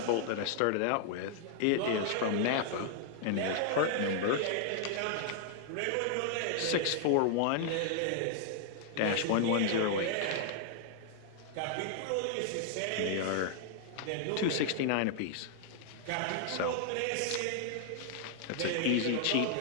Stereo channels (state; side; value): different; both; correlation 0.00